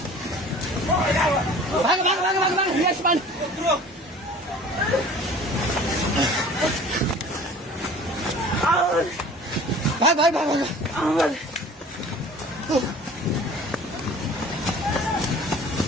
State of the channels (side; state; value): both; normal; correlation 0.45